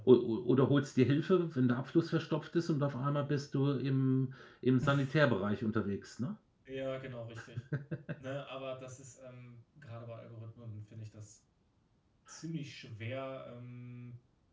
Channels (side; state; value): both; identical; correlation 1.00